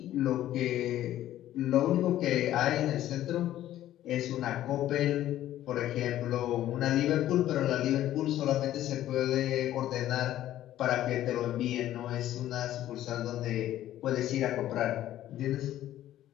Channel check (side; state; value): right; quieter; 13.1 dB